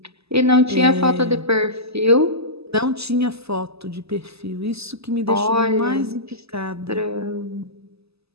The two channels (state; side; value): late; left; 0.79 ms